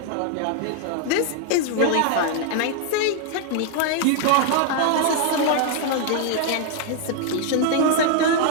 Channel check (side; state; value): both; different; correlation 0.00